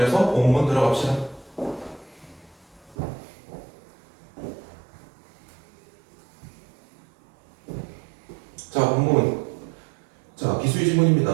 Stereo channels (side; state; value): left; drops out; at 3.0 s